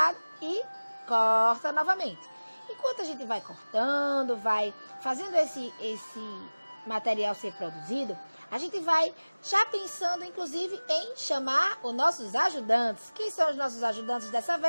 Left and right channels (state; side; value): inverted; both; correlation -1.00